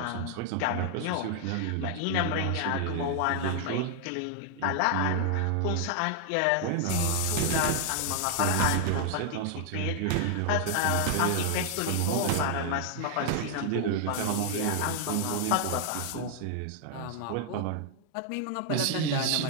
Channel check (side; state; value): both; different; correlation 0.00